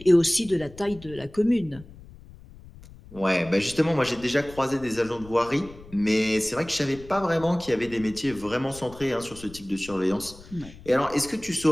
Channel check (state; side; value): noise; left; rumble, 19 dB below the sound